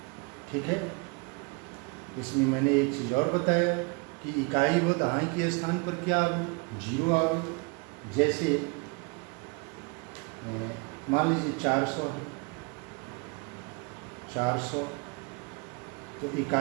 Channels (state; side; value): quieter; left; 31.3 dB